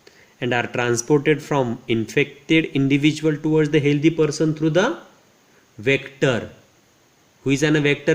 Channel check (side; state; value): both; identical; correlation 1.00